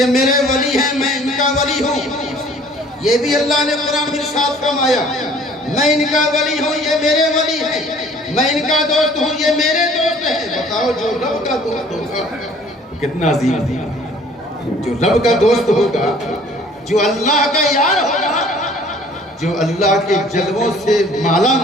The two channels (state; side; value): normal; both; correlation 0.54